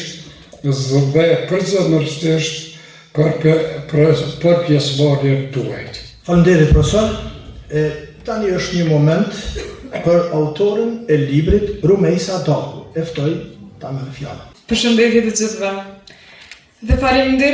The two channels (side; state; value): both; identical; correlation 1.00